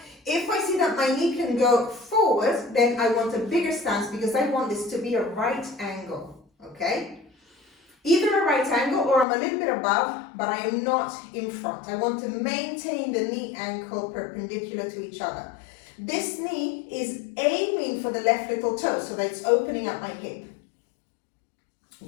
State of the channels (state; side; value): drops out; right; at 9.2 s